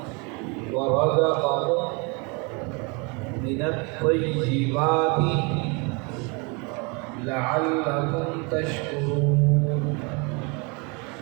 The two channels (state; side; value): quieter; left; 31.2 dB